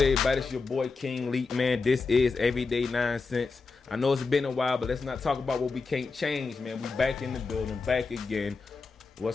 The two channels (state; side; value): quieter; right; 4.3 dB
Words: everybody? It's your boy King Leak, man. This is Everyday 9 Cents. I know it's been a while, but let's not talk about what we can't change, man. We back in the building, back again.